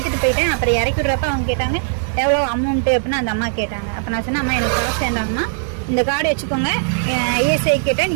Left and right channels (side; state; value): left; silent; digital silence